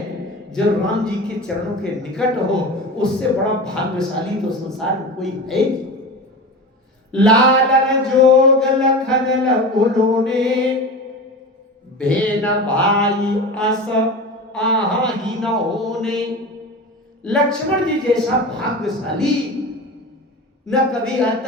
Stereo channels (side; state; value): both; normal; correlation 0.29